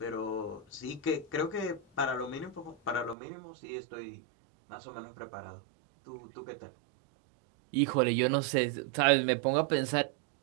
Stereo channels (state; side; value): drops out; left; at 3.2 s